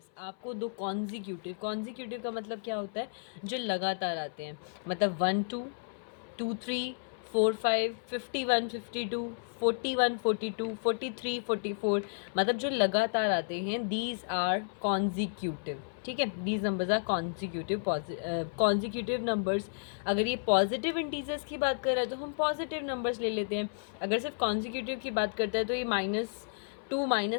आपको 2 कॉन्जिक्यूटिव का मतलब क्या होता है, जो लगातार आते हैं. मतलब 1 2 2 3 4 5 51 52 41 42 43 44, मतलब जो लगातार आते हैं, दीज आर कॉन्जिक्यूटिव. ठीक है, these numbers are consecutive numbers. अगर ये पॉजिटिव इंटीजर्स की बात कर रहा है तो हम पॉजिटिव नंबर्स ले लेते हैं, अगर सिर्फ कॉन्जिक्यूटिव की बात करता है तो ये -2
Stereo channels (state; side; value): silent; right; 56 dB below the other